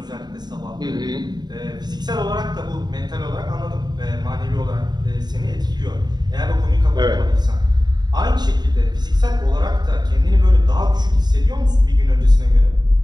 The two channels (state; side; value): late; left; 0.20 ms